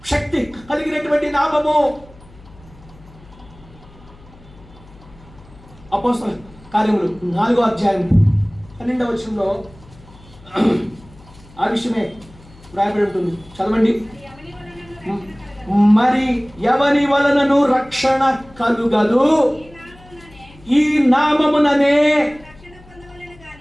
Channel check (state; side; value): noise; left; hum, 24 dB below the sound